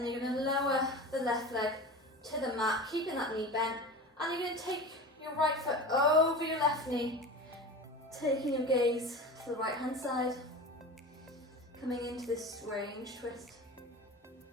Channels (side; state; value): both; normal; correlation 0.32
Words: you're going to lower the left leg to the mat, keeping that knee bent, and you're going to take your right foot over your left knee, taking your gaze to the right hand side, coming into this strange twist.